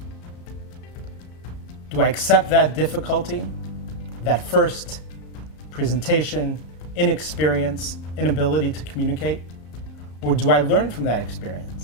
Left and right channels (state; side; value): late; right; 34 ms